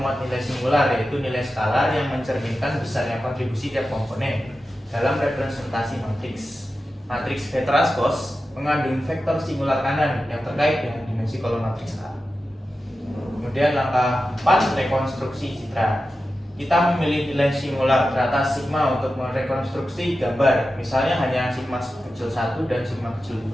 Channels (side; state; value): both; normal; correlation 0.92